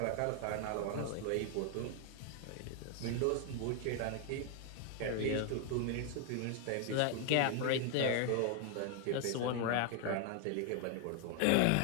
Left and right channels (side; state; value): both; different; correlation 0.00